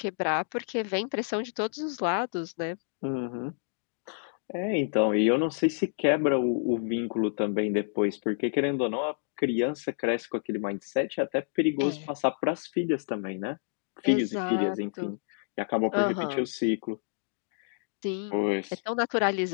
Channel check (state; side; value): silent; right; digital silence